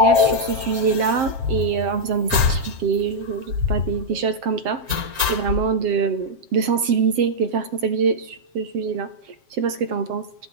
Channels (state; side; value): late; left; 7.6 ms